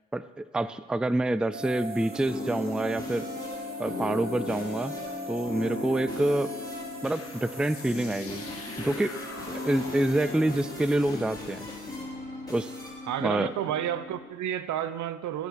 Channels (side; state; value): both; normal; correlation 0.81